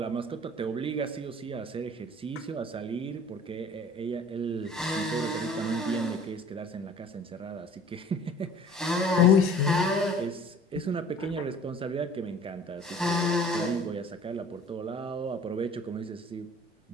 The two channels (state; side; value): normal; both; correlation 0.48